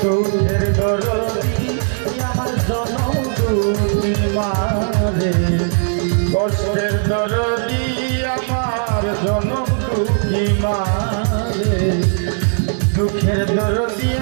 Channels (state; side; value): silent; left; digital silence